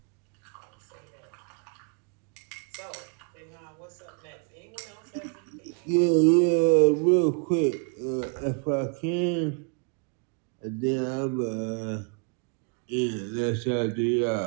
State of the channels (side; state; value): left; quieter; 38.3 dB